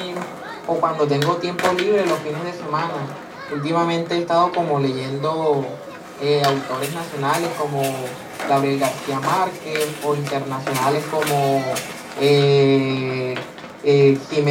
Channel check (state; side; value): identical; both; correlation 1.00